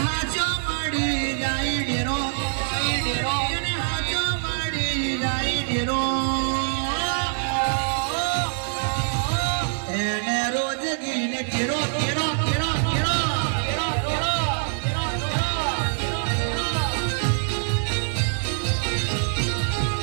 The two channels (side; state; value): left; silent; 62 dB below the other